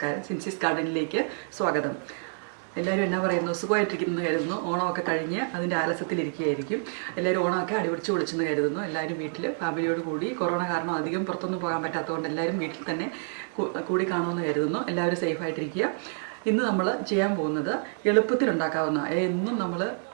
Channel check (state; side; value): silent; left; 59 dB below the other